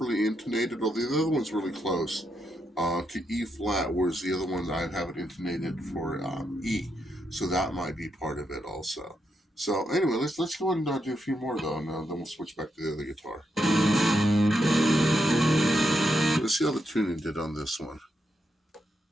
intonated, although the other one's really close to E flat, whereas the other one I have it intonated for E. So that might be part of it also. So anyway, let's go ahead and do a few more though, and then we'll switch back to the other guitar. Let's see how the tuning did on this one,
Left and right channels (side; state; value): both; normal; correlation 0.81